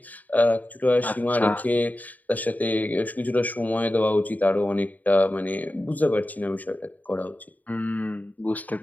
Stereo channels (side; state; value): right; late; 0.078 ms